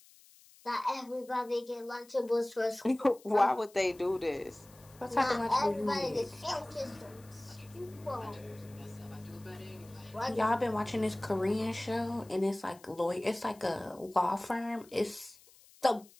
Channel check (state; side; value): noise; left; hiss, 25 dB below the sound